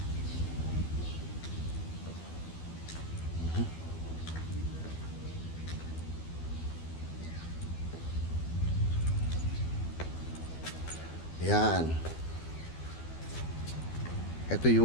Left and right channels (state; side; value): late; right; 12 ms